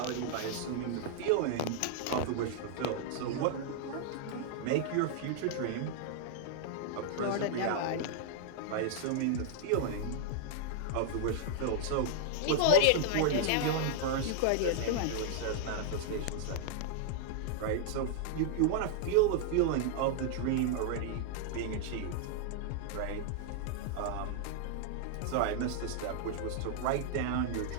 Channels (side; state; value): both; different; correlation -0.01